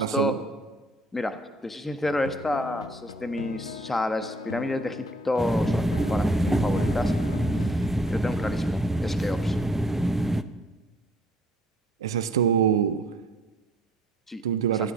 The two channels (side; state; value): both; normal; correlation 0.60